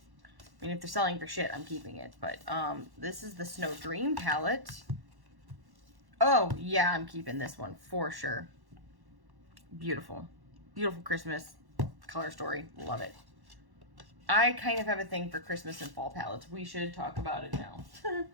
mean, if they're selling for shit, I'm keeping it. But this is the Snow Dream palette. Oh, yeah, I'm keeping this one for sure. Beautiful. Beautiful Christmas color story. Love it. I kind of have a thing for Christmas and fall palettes. We should talk about it now.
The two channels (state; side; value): late; left; 1.1 ms